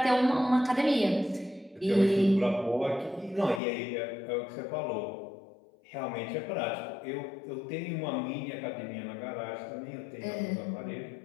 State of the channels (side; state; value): right; drops out; at 3.6 s